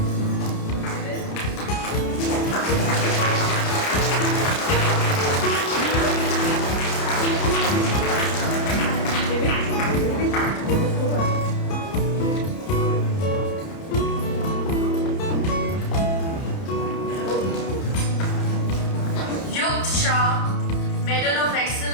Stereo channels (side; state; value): right; late; 30 ms